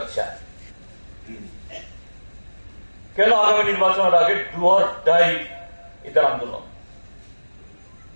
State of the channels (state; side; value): inverted; both; correlation -1.00